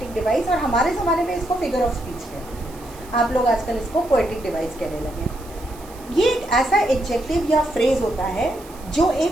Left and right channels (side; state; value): right; noise; hiss, 22 dB below the sound